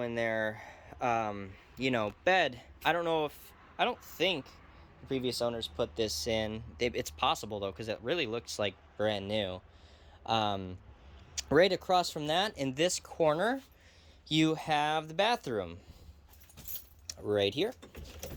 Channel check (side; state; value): both; identical; correlation 1.00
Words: in there bed. I don't think the previous owners put this in. It's possible though, because it really looks like brand new. Right across from that, in this corner, you have the bathroom right here.